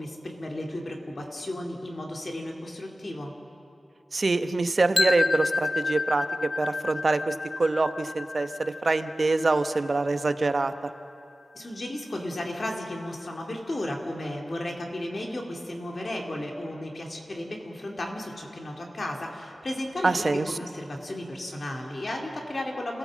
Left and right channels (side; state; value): both; normal; correlation 0.95